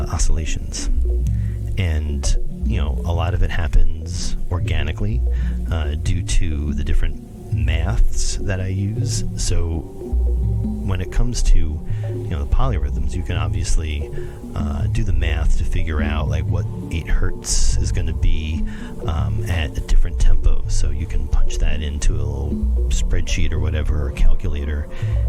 And a lot of it happens organically due to the different maths that I use. So when it comes to the polyrhythms, you can obviously do the math to figure out like what 8 hertz is going to be at a different tempo. So you can punch that into a little spreadsheet or whatever, or calculator,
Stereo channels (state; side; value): identical; both; correlation 1.00